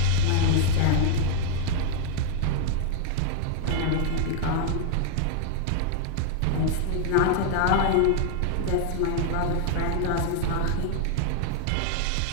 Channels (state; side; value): different; both; correlation 0.00